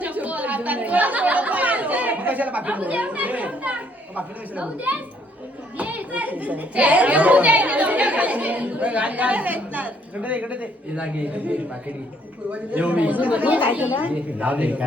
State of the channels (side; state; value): both; normal; correlation 0.67